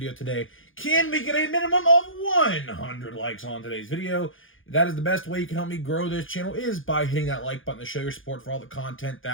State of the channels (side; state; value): right; late; 0.58 ms